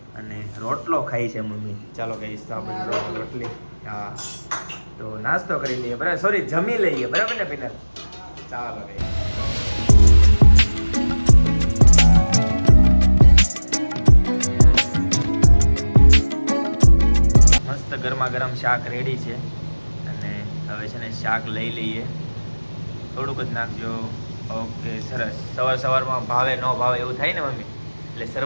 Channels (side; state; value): both; inverted; correlation -1.00